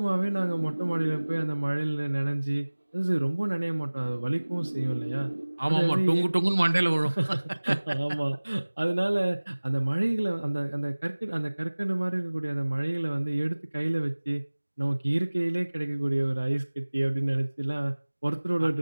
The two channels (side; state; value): both; inverted; correlation -1.00